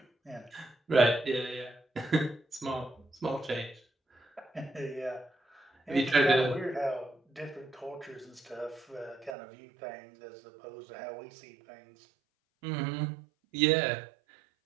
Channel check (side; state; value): left; drops out; at 9.3 s